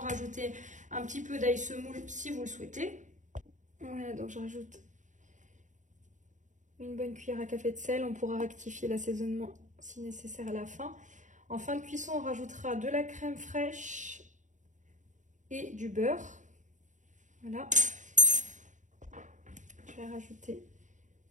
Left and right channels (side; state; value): left; late; 0.36 ms